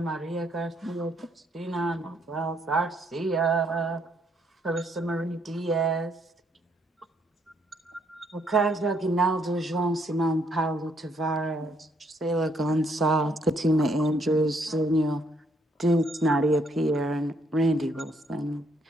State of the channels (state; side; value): normal; both; correlation 0.71